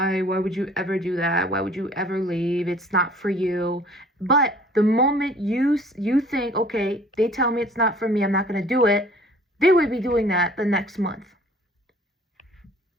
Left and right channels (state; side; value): normal; both; correlation 0.53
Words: would you ever do that? Why would you ever leave? It's not for you. But The moment you think, okay, they tell me it's not for me, I'm not going to do it, they would be doing that the next month.